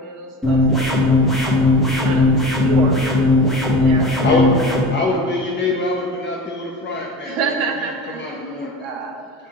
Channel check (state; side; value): normal; both; correlation 0.33